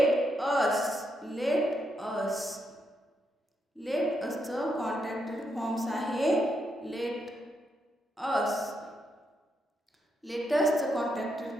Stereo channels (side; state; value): both; normal; correlation 0.80